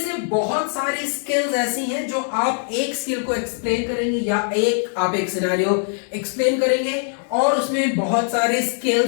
बहुत सारी स्किल्स ऐसी हैं जो आप एक स्किल को एक्सप्लेन करेंगे या आप एक सिनेरियो एक्सप्लेन करेंगे और उसमें बहुत सारी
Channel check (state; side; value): silent; right; digital silence